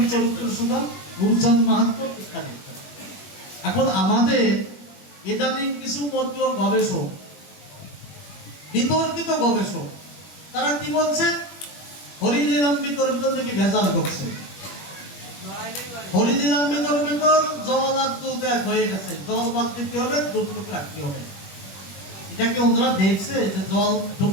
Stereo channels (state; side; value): late; right; 21 ms